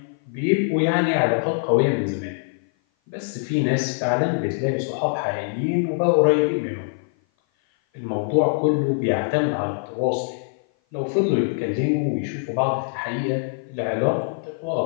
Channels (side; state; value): right; silent; 56 dB below the other